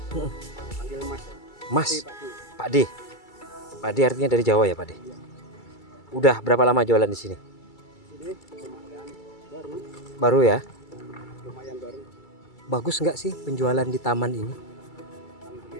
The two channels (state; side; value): late; right; 2.3 ms